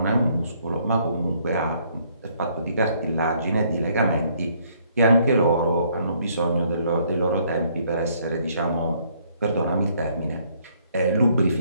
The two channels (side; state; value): both; inverted; correlation -0.66